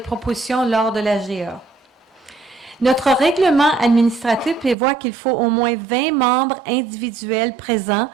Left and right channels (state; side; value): drops out; left; at 4.8 s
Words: lors de l'AGA. Notre règlement administratif prévoit qu'il faut au moins 20 membres individuels présents